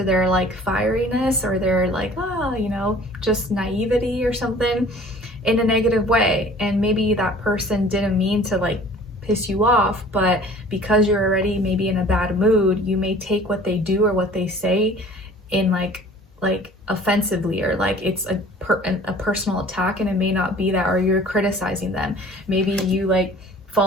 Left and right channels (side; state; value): both; normal; correlation 0.49